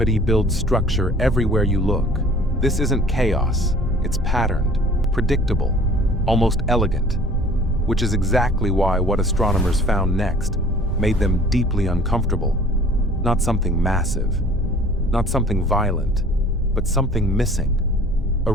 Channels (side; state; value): both; normal; correlation 0.50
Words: builds structure everywhere you look. This isn't chaos, it's patterned, predictable, almost elegant, which is exactly why what astronomers found next made them deeply uncomfortable. Not something massive, not something violent, but something missing. A